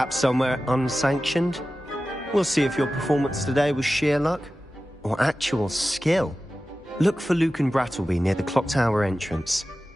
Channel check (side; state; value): both; normal; correlation 0.95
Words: somewhere unsanctioned? We'll see if your performance today was sheer luck or actual skill. Look for Luke and Brattleby near the clock tower entrance,